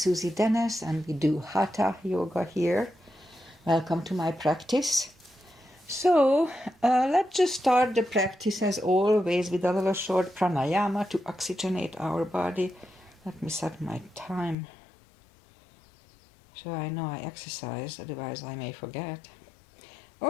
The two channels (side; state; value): right; drops out; at 14.6 s